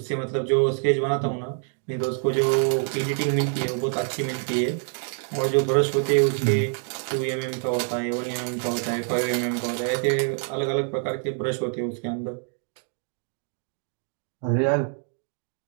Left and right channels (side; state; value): left; silent; 56 dB below the other